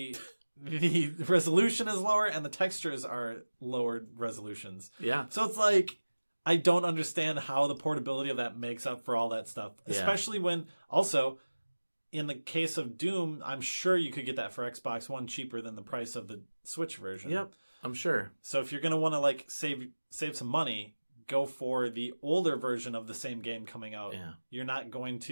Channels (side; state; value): both; inverted; correlation -1.00